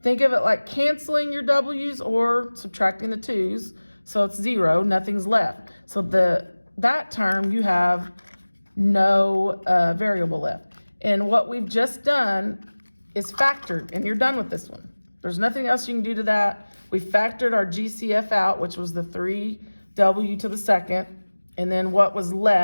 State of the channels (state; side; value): inverted; both; correlation -1.00